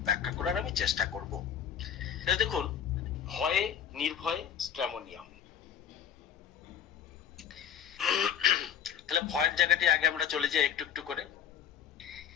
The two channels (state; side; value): quieter; right; 8.8 dB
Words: ব্যাখ্যা করার আমি চেষ্টা করব। দেখুন, ভয়ে নির্ভয়ে স্ট্র্যামোনিয়াম। তাহলে ভয়ের জায়গাটি আগে আমরা চলে যাই একটু একটু করে।